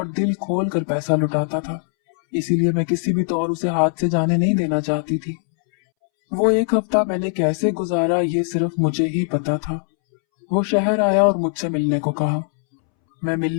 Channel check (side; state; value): right; silent; 66 dB below the other